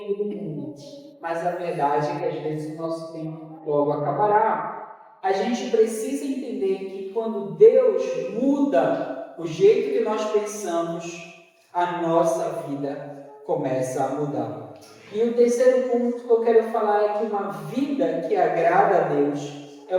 do mundo, mas a verdade é que às vezes o nosso tempo logo acabará. A gente precisa entender que quando Deus muda o jeito que nós pensamos, a nossa vida começa a mudar. E o terceiro ponto que eu quero falar é que uma vida que agrada a Deus é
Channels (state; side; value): identical; both; correlation 1.00